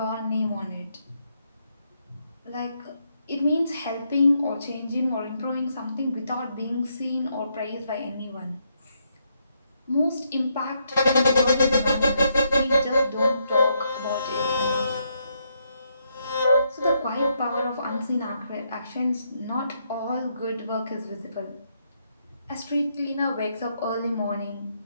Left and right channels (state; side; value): inverted; both; correlation -0.77